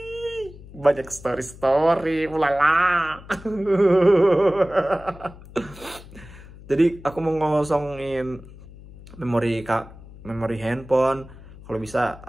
banyak story ulala. Jadi aku mau ngosongin memori handphone. Kalau bisa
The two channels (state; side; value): noise; left; hum, 18 dB below the sound